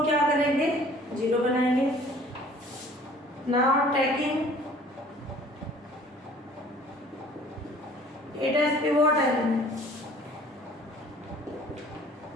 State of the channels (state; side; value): normal; both; correlation 0.51